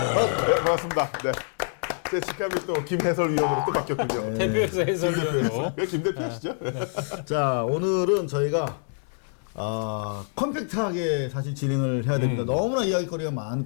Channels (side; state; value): right; silent; 60 dB below the other